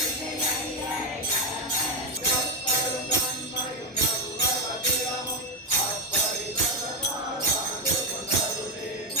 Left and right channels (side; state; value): both; normal; correlation 0.08